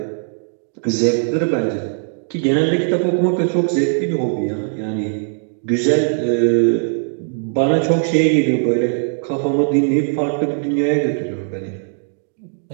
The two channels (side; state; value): left; silent; digital silence